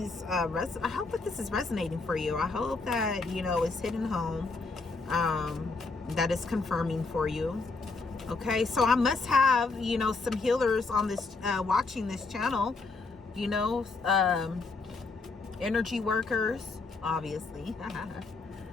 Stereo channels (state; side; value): quieter; right; 3.9 dB